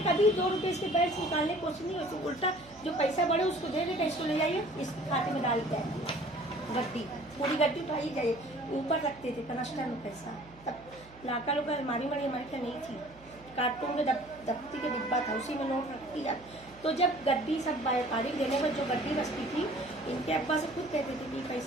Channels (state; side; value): noise; right; hum, 23 dB below the sound